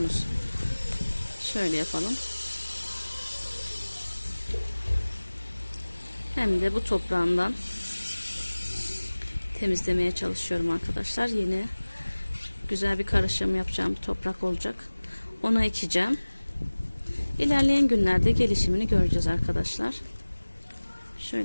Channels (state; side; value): inverted; both; correlation -1.00